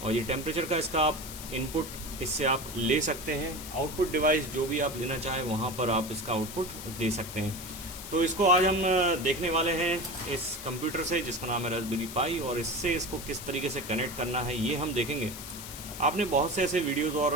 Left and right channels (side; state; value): left; noise; hiss, 11 dB below the sound